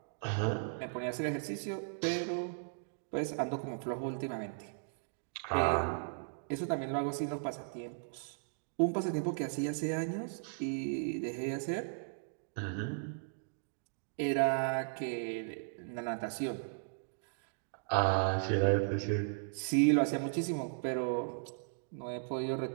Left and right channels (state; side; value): silent; left; digital silence